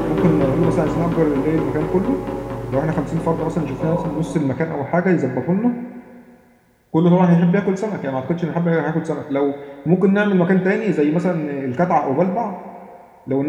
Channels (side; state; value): both; identical; correlation 1.00